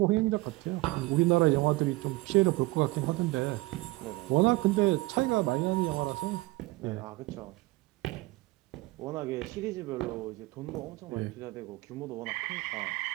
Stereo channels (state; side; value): quieter; left; 20.9 dB